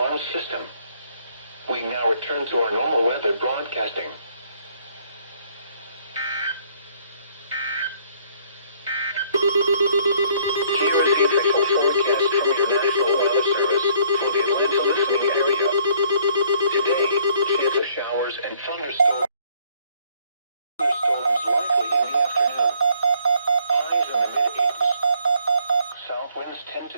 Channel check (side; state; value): both; inverted; correlation -0.63